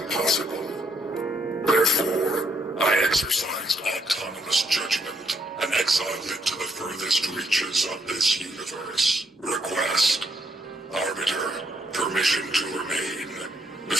Therefore, I exercised autonomous judgment and exiled it to the furthest reaches of this universe. Request. Arbiter, permission to remain.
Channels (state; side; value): normal; both; correlation 0.74